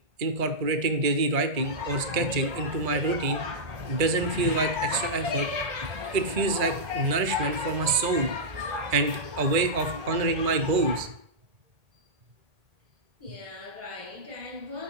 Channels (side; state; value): left; late; 1.8 ms